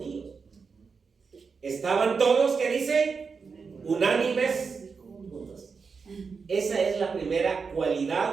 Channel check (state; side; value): quieter; left; 5.3 dB